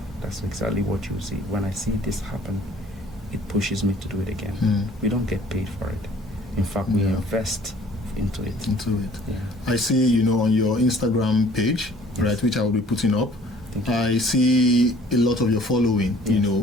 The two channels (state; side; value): normal; both; correlation 0.54